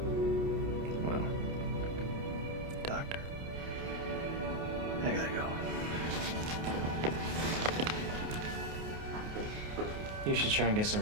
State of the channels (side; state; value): left; late; 28 ms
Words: Well, doctor, I gotta go. You should try and get